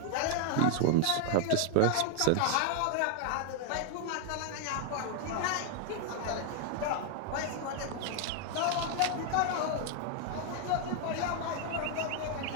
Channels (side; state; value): both; different; correlation 0.00